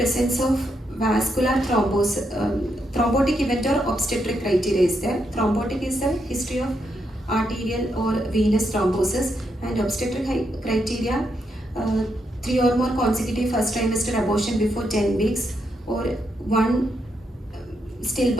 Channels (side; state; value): both; normal; correlation 0.80